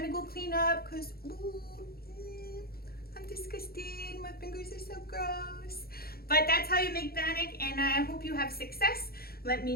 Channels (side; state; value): right; late; 0.44 ms